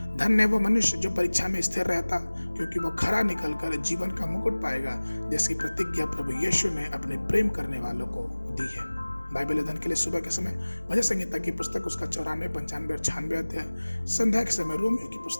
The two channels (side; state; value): both; inverted; correlation -1.00